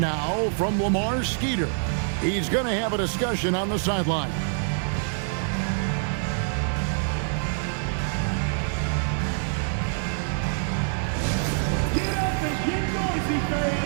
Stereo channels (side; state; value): left; silent; 61 dB below the other